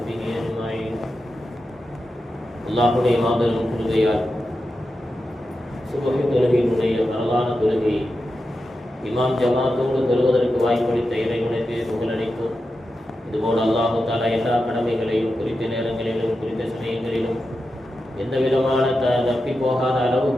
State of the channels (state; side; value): normal; both; correlation 0.90